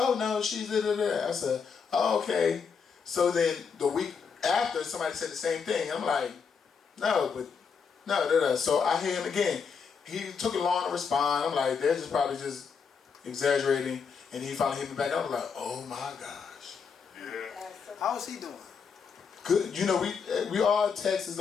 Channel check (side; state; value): right; quieter; 6.0 dB